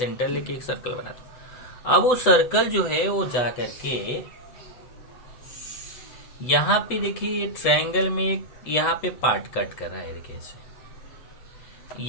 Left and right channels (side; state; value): right; late; 8.1 ms